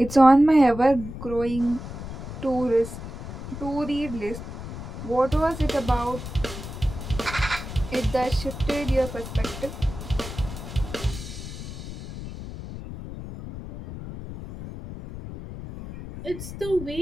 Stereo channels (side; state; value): left; noise; rumble, 10 dB below the sound